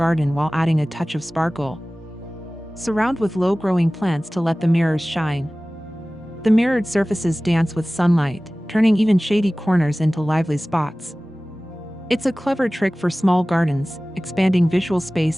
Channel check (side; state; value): both; normal; correlation 0.98